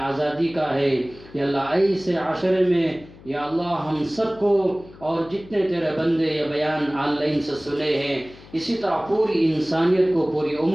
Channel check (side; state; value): left; noise; hum, 21 dB below the sound